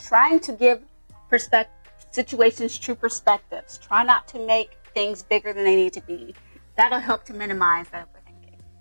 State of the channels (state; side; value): inverted; both; correlation -1.00